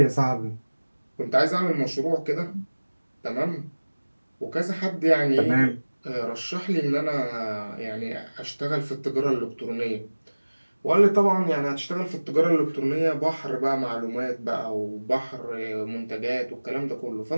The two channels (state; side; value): inverted; both; correlation -1.00